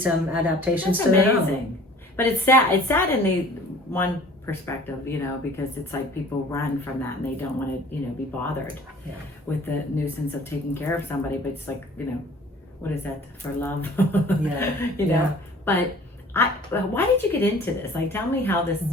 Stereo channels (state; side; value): normal; both; correlation 0.49